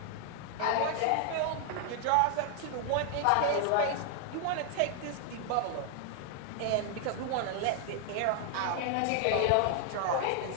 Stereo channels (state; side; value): different; both; correlation 0.00